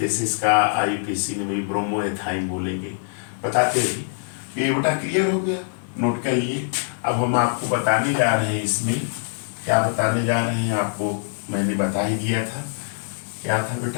इसका IUPAC में भी ब्रोमोएथाइन बोलेंगे, बताते हैं। ये बेटा क्लियर हो गया, नोट कर लिए। अब हम आपको बताने जा रहे हैं, इसमें क्या बताने जा रहे हैं आपको मैंने बता ही दिया था। क्या था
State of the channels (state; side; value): silent; right; digital silence